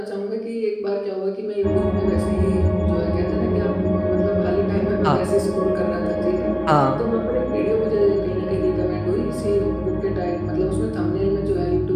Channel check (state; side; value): identical; both; correlation 1.00